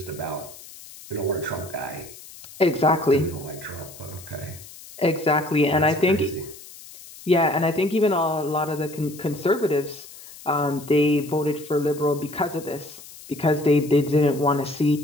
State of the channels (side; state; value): left; noise; hiss, 18 dB below the sound